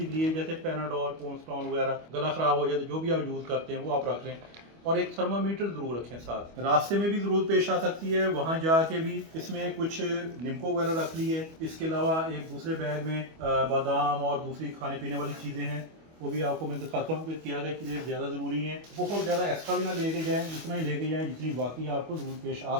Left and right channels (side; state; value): left; late; 25 ms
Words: के लिए, जैसे पैनाडोल, पोन्स्टॉन वगैरह, गला ख़राब हो जाए तो जो भी आप यूज़ करते हैं वो आप रख लें, और एक थर्मामीटर ज़रूर रखें साथ। रास्ते में भी ज़रूरत पेश आ सकती है, वहाँ जाके भी इसमें कुछ निम्को वगैरह रख ली है। इसके अलावा एक दूसरे बैग में बादाम और दूसरी खाने पीने वाली चीज़ें हैं, वो भी आपको मैं दिखाता हूँ कि क्या क्या चीज़ें ज़्यादा ज़रूरी हैं। बहुत ज़्यादा एक्स्ट्रा भी ना लेके जाएँ, उतना ही लेके जाएँ जितनी बाकी आपको ज़रूरत पेश आ